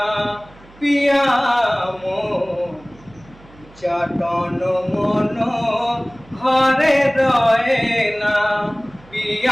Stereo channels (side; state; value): right; noise; hum, 25 dB below the sound